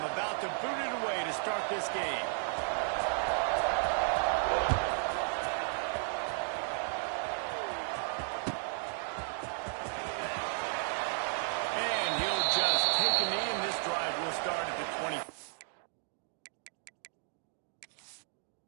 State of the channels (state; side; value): silent; left; 55 dB below the other